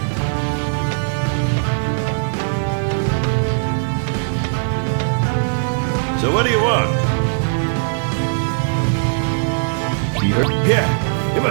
So what do you want? Yeah, it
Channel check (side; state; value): left; silent; digital silence